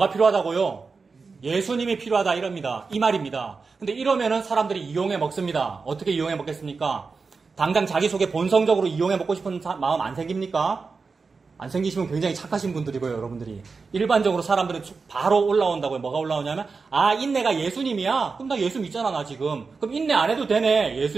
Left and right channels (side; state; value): left; quieter; 4.6 dB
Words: 필요하다고요? 예수님이 필요하다 이럽니다. 이 말입니다. 근데 이러면은 사람들이 이용해 먹습니다. 어떻게 이용해 먹겠습니까? 당장 자기 속에 본성적으로 이용해 먹고 싶은 마음 안 생깁니까? 안 생기시면 굉장히 착하신 분들이고요, 여러분들이. 일반적으로 사람들은 바로 올라온다고요. 뭐가 올라오냐면, 인내가 예수님이야? 그럼 나 예수 믿잖아, 나 지금. 그럼 인내 안 해도 되네,